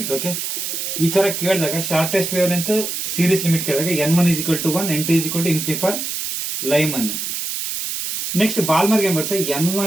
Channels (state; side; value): noise; right; hiss, 4 dB below the sound